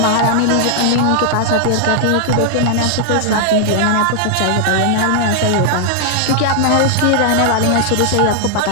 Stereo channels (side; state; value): both; different; correlation -0.01